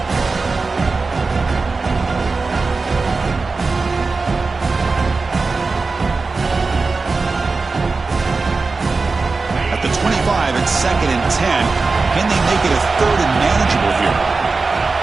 At the 25, it's 2nd and 10. Can they make it a 3rd and manageable here?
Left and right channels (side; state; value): left; quieter; 4.0 dB